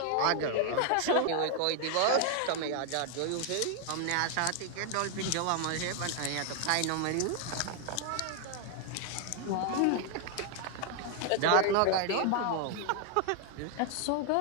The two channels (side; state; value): both; different; correlation 0.00